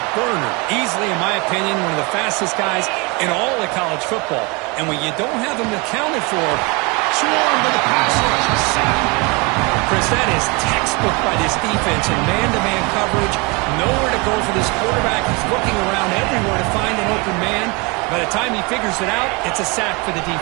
burner. Easily, in my opinion, one of the fastest guys in all of college football. And when you don't have him accounted for, swarmed by the pass rush. Sack. Chris, that is textbook by this defense in man-to-man coverage. Nowhere to go for this quarterback. He's looking around everywhere to find an open man. By the time he figures it out, it's a sack for the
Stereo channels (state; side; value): quieter; left; 28.5 dB